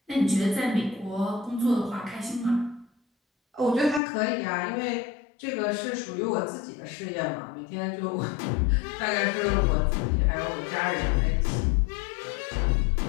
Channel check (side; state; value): right; drops out; at 4.0 s